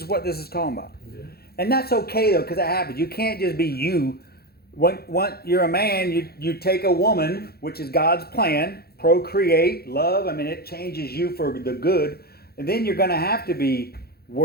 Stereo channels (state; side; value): late; right; 0.46 ms